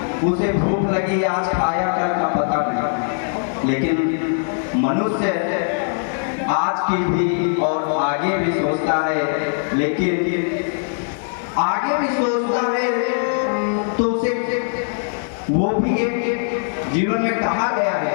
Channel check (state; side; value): silent; right; 65 dB below the other